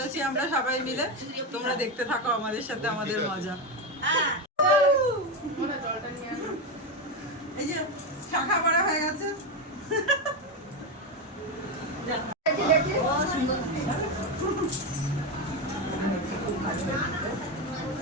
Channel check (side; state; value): both; normal; correlation 0.12